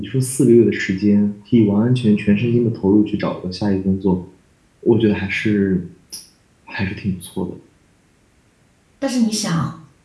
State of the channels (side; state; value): both; identical; correlation 1.00